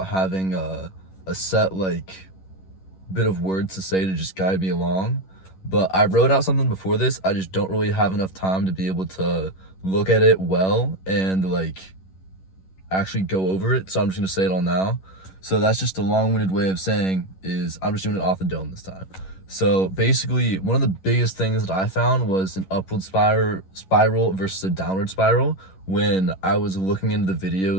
having a set bit of words to say to just guide me along. But I wrote out something before this. I just don't really have enough time to be able to look at it well and actually go over it. So I'm just gonna say it all now. So that's just a long-winded way of saying is I'm just doing it off the dome this time. So basically, one of the biggest things that I found was an upward spiral versus a downward spiral when I was looking into the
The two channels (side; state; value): right; late; 11 ms